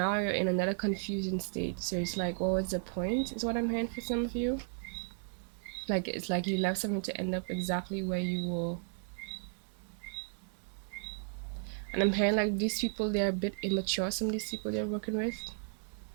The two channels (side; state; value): left; silent; digital silence